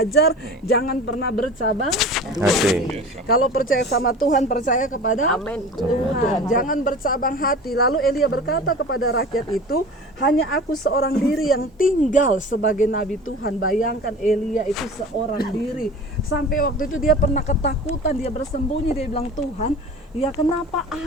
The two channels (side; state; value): both; normal; correlation 0.38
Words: jangan pernah bercabang hati. Kalau percaya sama Tuhan, percaya kepada Tuhan. Jangan bercabang hati. Lalu Elia berkata kepada rakyat itu, hanya aku seorang diri yang tinggal sebagai nabi Tuhan. Bayangkan Elia itu seorang diri. Sampai waktu itu dia pernah ketakutan, dia bersembunyi, dia bilang, Tuhan, ya kenapa